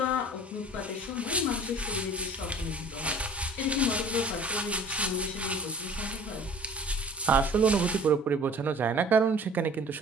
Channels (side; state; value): both; normal; correlation 0.46